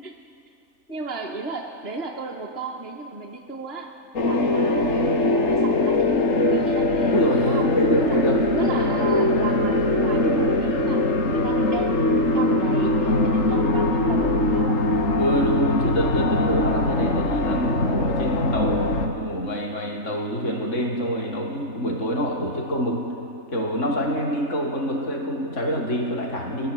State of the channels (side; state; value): right; late; 3.3 ms